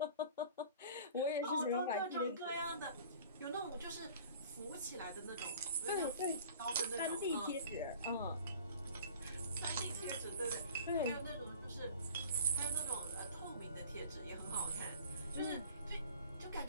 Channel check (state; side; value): inverted; both; correlation -0.45